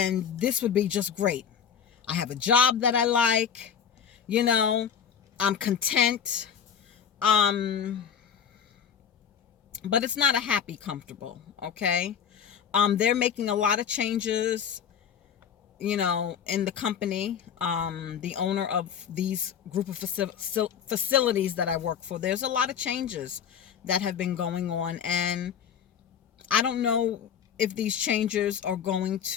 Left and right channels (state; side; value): quieter; right; 7.8 dB